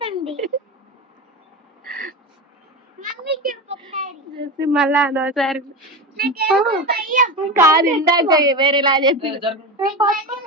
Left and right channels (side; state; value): both; normal; correlation 0.22